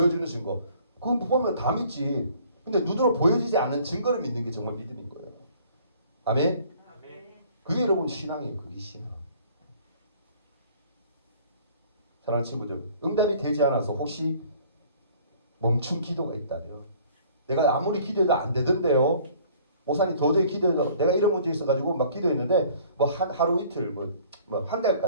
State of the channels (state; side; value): inverted; both; correlation -0.54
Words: 증거 그거 보면 다 믿지. 근데 눈으로 보여지지 않는 증거를 믿는 게 정말 믿음인 거예요. 아멘. 그게 여러분 신앙이에요. 그게 신앙. 사랑하는 친구들, 응답이 되지 않아서 혹시 멈춘 기도가 있다면 내가 아무리 기도해도 안 되던데요. 목사님 도저히 기도해도 내가 이런 문제 있어가지고 막 기도했는데 뭐 하루 이틀 뭐 한